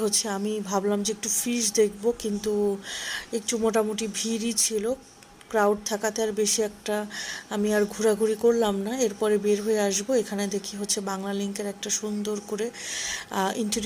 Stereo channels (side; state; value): both; identical; correlation 1.00